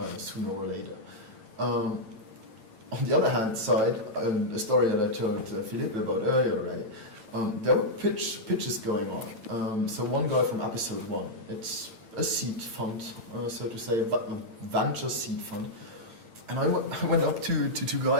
sooner or later. On the other hand side, a story that I told Philippe about earlier, right? There were pitches going on. So one guy from episode 1, it's a seed fund, so to say, a venture seed fund. And I went up to two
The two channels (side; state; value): left; late; 8.9 ms